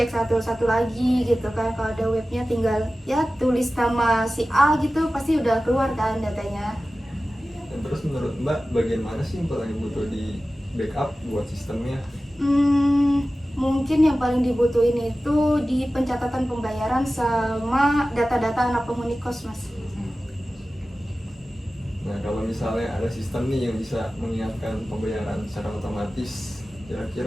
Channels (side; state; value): both; normal; correlation 0.96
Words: satu-satu lagi gitu kan. Kalau ada webnya tinggal ya tulis nama si A gitu, pasti udah keluar kan datanya. Dan terus menurut Mbak, bagian mana sih yang paling butuh di backup buat sistemnya? Mungkin yang paling dibutuhin itu di pencatatan pembayaran sama data-data anak penghuni kos Mas. Nah, kalau misalnya ada sistem nih yang bisa mengingatkan pembayaran secara otomatis,